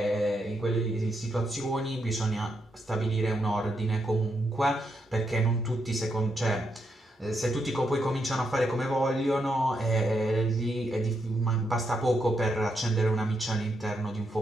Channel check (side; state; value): both; normal; correlation 0.80